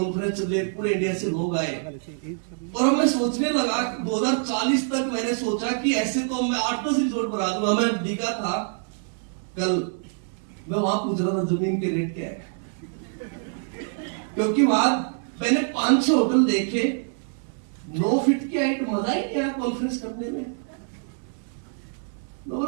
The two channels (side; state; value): left; silent; 61 dB below the other